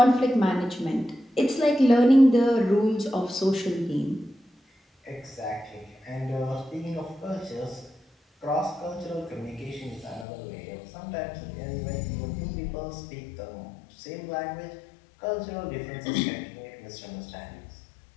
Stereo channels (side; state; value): right; drops out; at 10.2 s